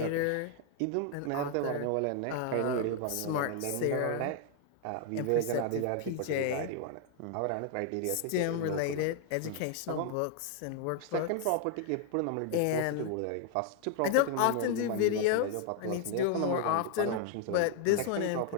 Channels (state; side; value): different; both; correlation 0.00